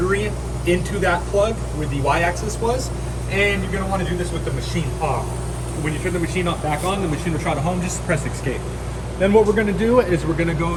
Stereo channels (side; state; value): both; identical; correlation 1.00